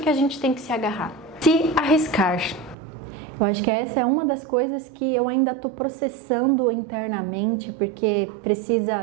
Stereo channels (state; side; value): drops out; left; at 2.8 s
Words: a gente tem que se agarrar. Se arriscar. Eu acho que essa é uma das coisas que eu ainda estou processando internamente, porque